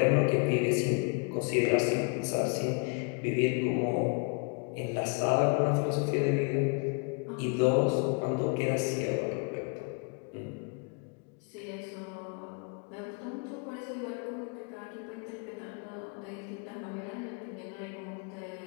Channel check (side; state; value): right; quieter; 34.6 dB